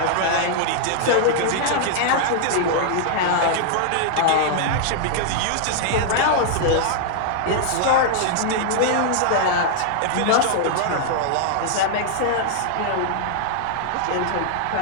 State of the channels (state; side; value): different; both; correlation -0.01